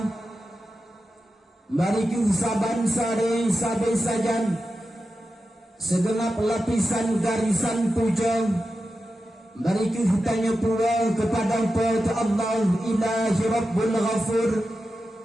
mari kita saban-sare sabai sajan segenap lapisan garisan puja, mari kita tanya pula kepada Allah Ilahi Rabbul Ghafur.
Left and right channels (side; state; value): both; normal; correlation 0.91